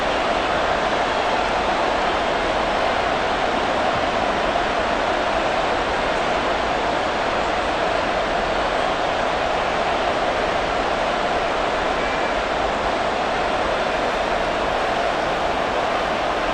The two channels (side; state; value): both; identical; correlation 1.00